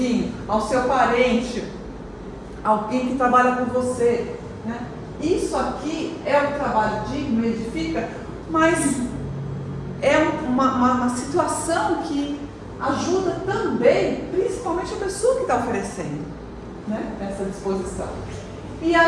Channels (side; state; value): both; identical; correlation 1.00